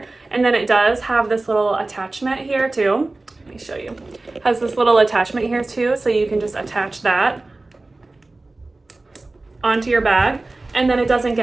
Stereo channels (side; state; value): left; quieter; 3.1 dB